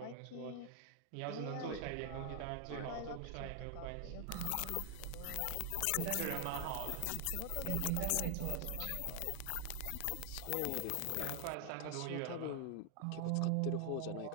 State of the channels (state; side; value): different; both; correlation 0.00